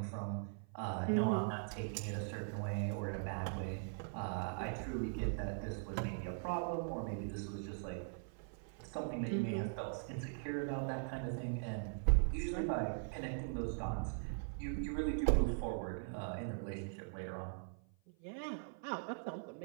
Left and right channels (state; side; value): silent; left; 50 dB below the other